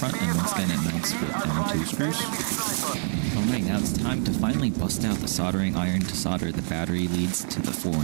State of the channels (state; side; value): silent; left; 60 dB below the other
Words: and once again it mounts with M2 screws. Alright, now it's time to finally bust out the soldering iron to solder the battery leads to the 4-in-1